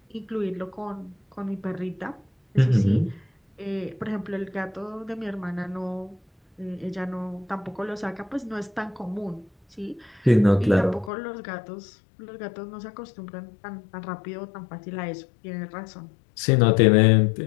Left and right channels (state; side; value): drops out; right; at 11.1 s